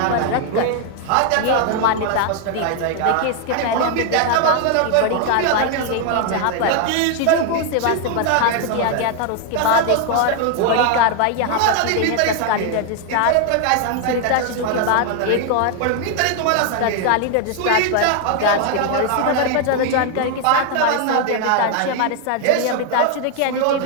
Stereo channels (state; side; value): different; both; correlation 0.00